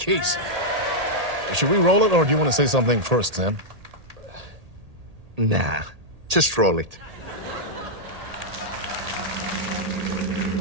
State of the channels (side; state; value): left; late; 1.8 ms